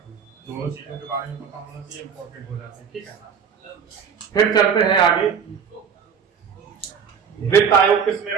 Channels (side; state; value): left; quieter; 6.9 dB